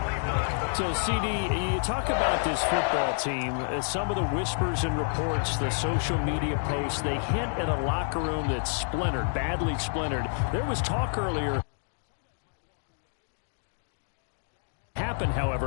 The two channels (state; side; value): silent; right; digital silence